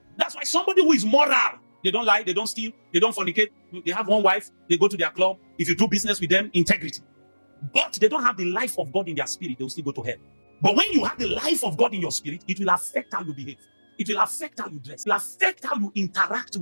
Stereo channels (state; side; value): inverted; both; correlation -1.00